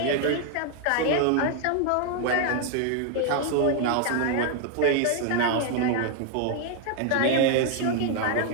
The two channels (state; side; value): different; both; correlation 0.00